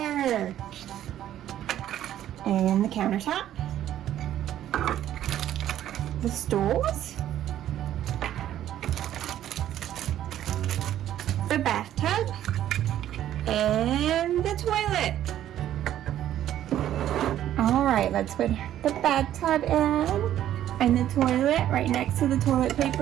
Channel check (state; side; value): quieter; left; 11.8 dB